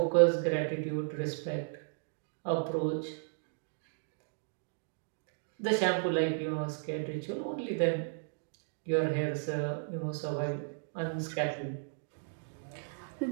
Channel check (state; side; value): silent; left; digital silence